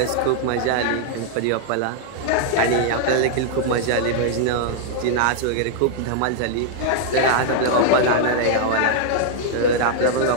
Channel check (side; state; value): both; different; correlation -0.01